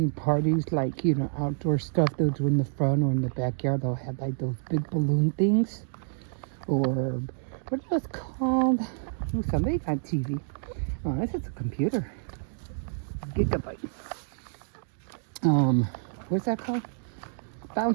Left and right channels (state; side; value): silent; left; digital silence